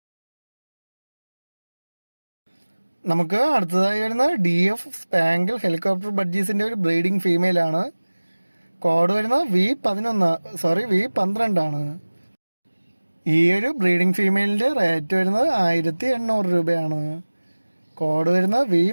നമുക്ക് അടുത്തതായി വരുന്ന DF സ്പാങ്കിൾ ഹെലികോപ്റ്റർ ബഡ്ജീസിൻ്റെ ഒരു ബ്രീഡിംഗ് ഫീമെയിലാണ്. കോഡ് വരുന്നത് V12 ആണ്. ഈ ഒരു ബ്രീഡിംഗ് ഫീമെയിലിൻ്റെ റേറ്റ് വരുന്നത് 1800 രൂപയാണ്. കോഡ് വരുന്നത്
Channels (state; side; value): inverted; both; correlation -1.00